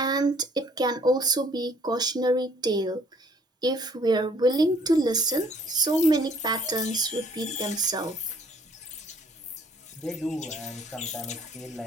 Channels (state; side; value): normal; both; correlation 0.60